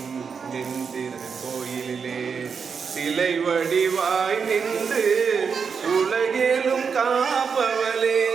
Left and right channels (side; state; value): left; quieter; 6.0 dB